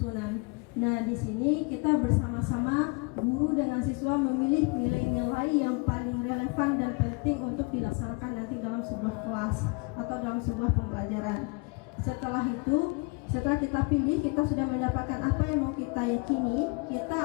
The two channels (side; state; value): right; quieter; 29.5 dB